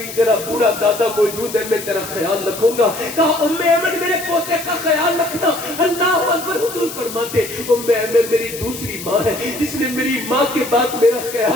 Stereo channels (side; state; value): left; noise; hiss, 11 dB below the sound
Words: تیرا بوڑھا دادا موجود ہے، میں تیرا خیال رکھوں گا. کہا ام ایمن میرے پوتے کا خیال رکھنا. اللہ اکبر. حضور فرماتے ام ایمن میری دوسری ماں ہے جس نے میری ماں کے بعد میرا